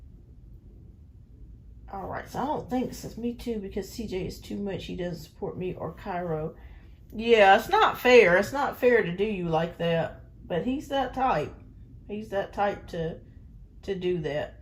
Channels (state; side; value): identical; both; correlation 1.00